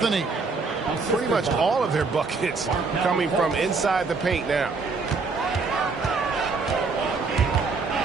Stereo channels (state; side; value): quieter; left; 4.3 dB